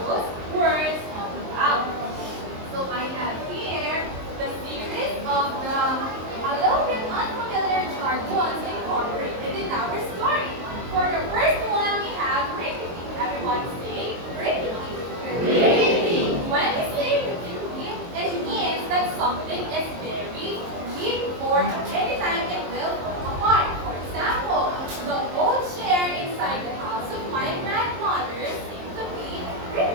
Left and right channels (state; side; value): late; left; 23 ms